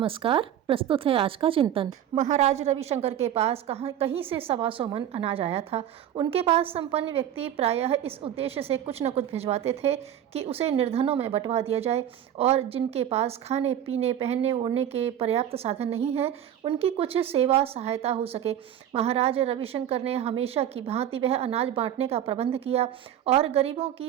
प्रस्तुत है आज का चिंतन। महाराज रविशंकर के पास कहीं से 125 मन अनाज आया था। उनके पास संपन्न व्यक्ति प्रायः इस उद्देश्य से कुछ न कुछ भिजवाते थे कि उसे निर्धनों में बंटवा दिया जाए, और जिनके पास खाने पीने पहनने ओढ़ने के पर्याप्त साधन नहीं हैं, उनकी कुछ सेवा सहायता हो सके। महाराज रविशंकर ने हमेशा की भांति वह अनाज बांटने का प्रबंध किया और गरीबों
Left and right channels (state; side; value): quieter; left; 10.6 dB